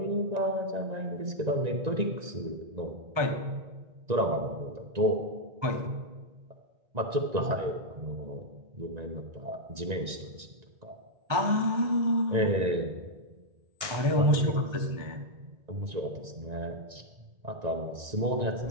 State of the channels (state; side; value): late; left; 1.9 ms